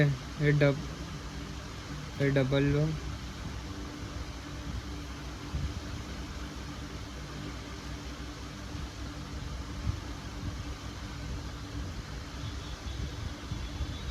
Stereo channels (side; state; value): both; identical; correlation 1.00